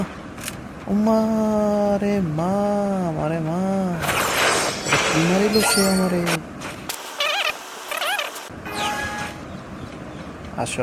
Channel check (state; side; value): identical; both; correlation 1.00